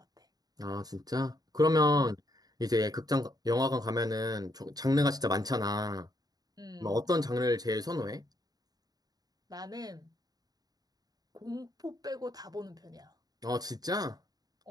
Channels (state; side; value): late; left; 0.19 ms